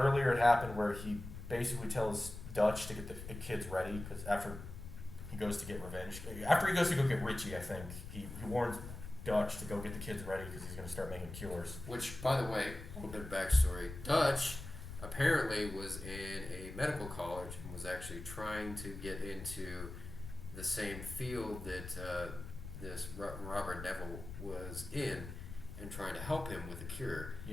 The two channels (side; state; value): left; noise; rumble, 10 dB below the sound